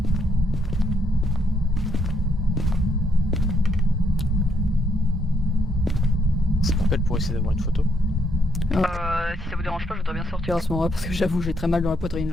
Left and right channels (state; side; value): normal; both; correlation 0.73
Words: Ça m'appelle pour essayer d'avoir une photo. Si ça vous dérange pas, je voudrais bien sortir. Pire à ce moment-là, parce que j'avoue, j'ai très mal dans la poitrine